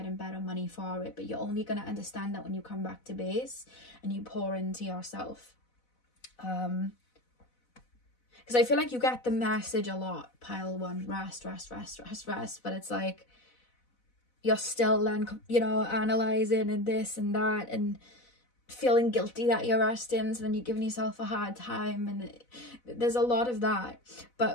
better money for it, but you're only going to understand that when you come back to base and you pour into yourself. Because I feel like you get the message a lot, pile one, rest, but it's like you're still then, you know, analysing and this and that and feeling guilty that you're resting, so then you're giving yourself a hard time, and there's a lot of that.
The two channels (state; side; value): late; right; 4.0 ms